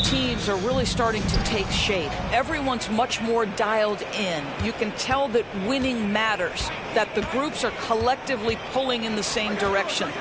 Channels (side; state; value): both; identical; correlation 1.00